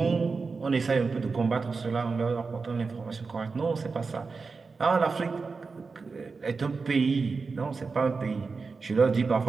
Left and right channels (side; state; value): left; quieter; 4.5 dB